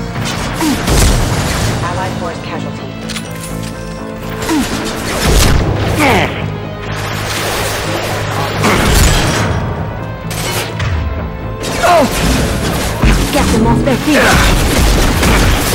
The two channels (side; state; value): both; identical; correlation 1.00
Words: Allied force casualty. Get them off their feet!